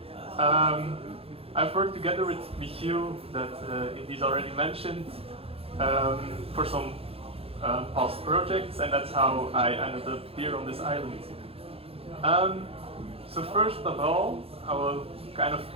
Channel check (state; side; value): late; left; 0.28 ms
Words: I've worked together with Michiel, that Elise already mentioned, for some past projects, and that's how I ended up here on this island. So first of all, I will kind of